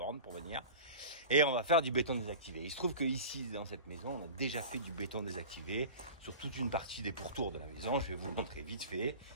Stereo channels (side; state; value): both; inverted; correlation -0.36